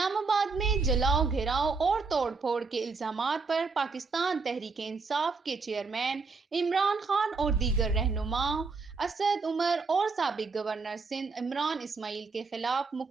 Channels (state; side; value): quieter; left; 4.4 dB